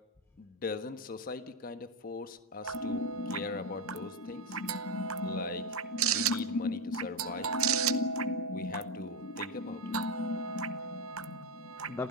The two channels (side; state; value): both; normal; correlation 0.09